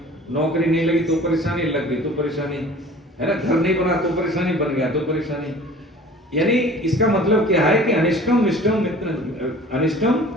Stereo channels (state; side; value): normal; both; correlation 0.45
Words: नौकरी नहीं लगी तो परेशानी, लग गई तो परेशानी, है ना, घर नहीं बना तो परेशानी, बन गया तो परेशानी। यानी इसका मतलब क्या है कि अनिष्टम विष्टम मित्र, अनिष्टम